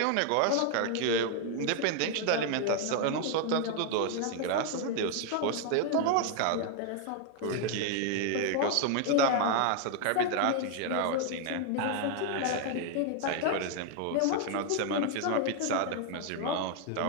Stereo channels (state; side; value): different; both; correlation 0.00